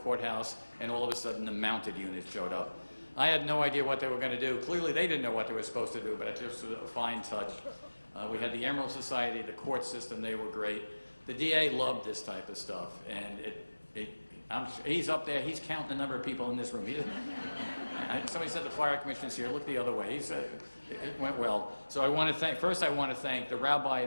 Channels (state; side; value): inverted; both; correlation -1.00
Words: and all of a sudden the mounted unit showed up. I had no idea what they were going to do. Clearly, they didn't know what they were supposed to do, but it just was a fine touch. We had the Emerald Society, the court system, they were great. The DA loved this type of stuff, and he's up there, he's counting the number of people in this room. Somebody said the fire commissioner's here, look the other way. He said, it went well. So I want to thank the rabbi